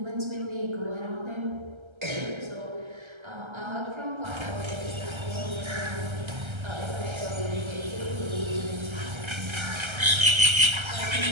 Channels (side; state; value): left; late; 1.3 ms